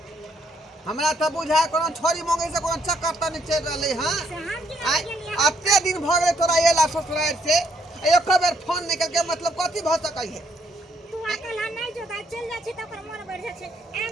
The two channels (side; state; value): both; normal; correlation 0.70